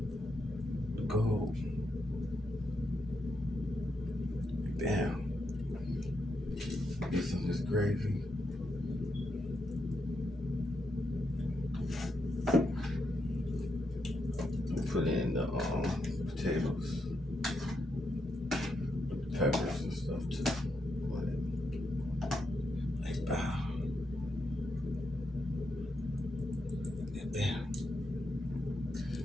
The gold. Bam. Get some of this gravy. Put in the potatoes, the peppers and stuff too. Like bam. Bam.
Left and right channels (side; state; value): both; normal; correlation 0.82